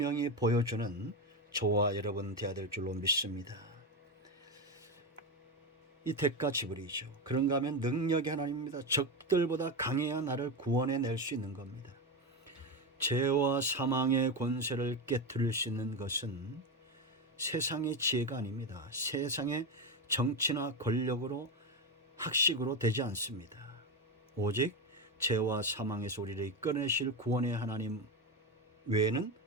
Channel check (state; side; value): normal; both; correlation 0.14